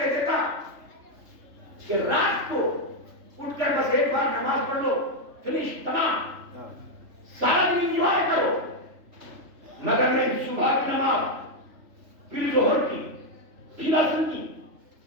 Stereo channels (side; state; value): left; late; 3.3 ms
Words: دیتا کہ رات کو اٹھ کر بس ایک بار نماز پڑھ لو, فنش, تمام, سارا دن انجوائے کرو. مگر نہیں, صبح کی نماز, پھر ظہر کی, پھر عصر کی,